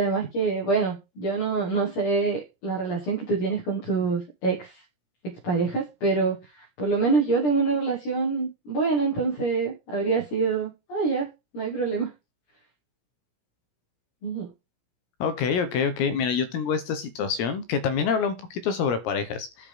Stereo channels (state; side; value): late; right; 17 ms